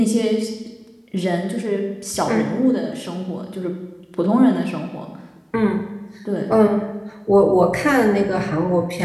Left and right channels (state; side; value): identical; both; correlation 1.00